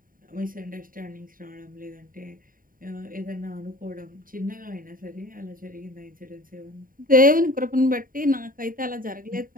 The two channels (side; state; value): left; late; 0.41 ms